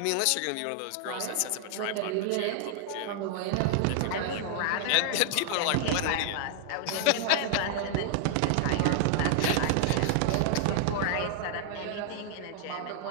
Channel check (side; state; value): both; different; correlation 0.00